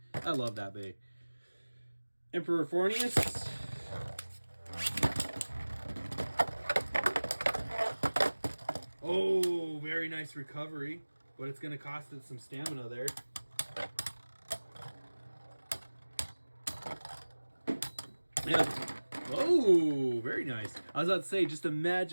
I love that bay. Emperor Fornius. Oh, very nice recovery. But it's going to cost it some stamina there. Yeah. Oh, very nice. I was about to say, just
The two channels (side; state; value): both; inverted; correlation -1.00